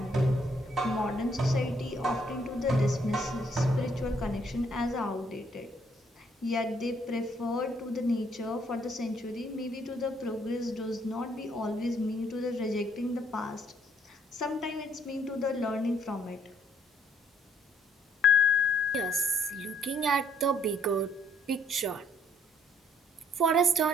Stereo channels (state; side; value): normal; both; correlation 0.66